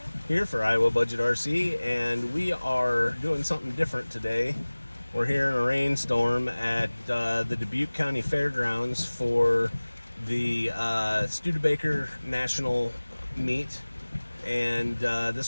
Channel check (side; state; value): both; inverted; correlation -1.00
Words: here for Iowa Budget RC, and we are doing something different today. We're here in a rainstorm at the Dubuque County Fairgrounds for the Studebaker National meet, and